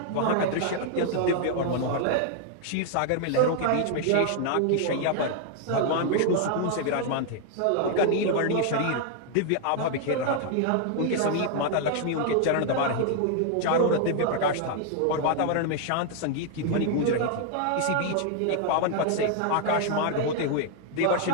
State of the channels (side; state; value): both; different; correlation 0.00